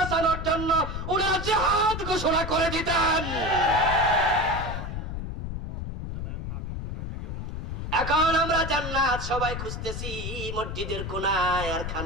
জন্য ওনারা জিহাদ ঘোষণা করে দিতেন। এখন আমরা জান্নাত সবাই খুঁজতেছি মসজিদের কোনায় আর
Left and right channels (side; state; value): left; noise; rumble, 5 dB below the sound